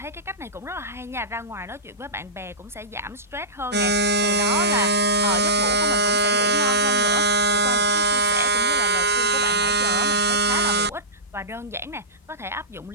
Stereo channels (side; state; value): both; normal; correlation -0.16